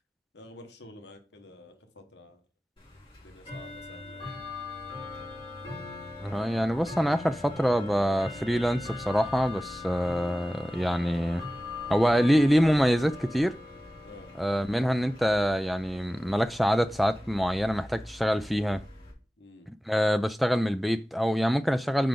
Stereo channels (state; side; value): normal; both; correlation 0.95